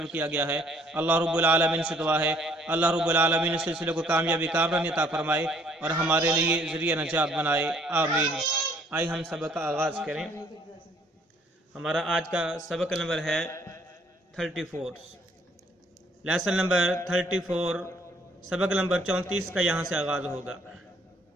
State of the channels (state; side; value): normal; both; correlation 0.62